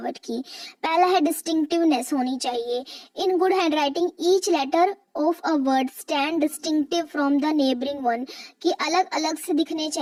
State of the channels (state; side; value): identical; both; correlation 1.00